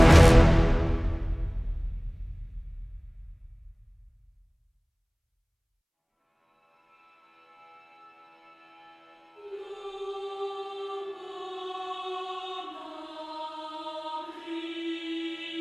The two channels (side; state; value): both; identical; correlation 1.00